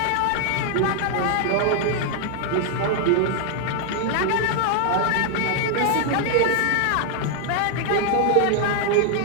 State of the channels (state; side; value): different; both; correlation 0.00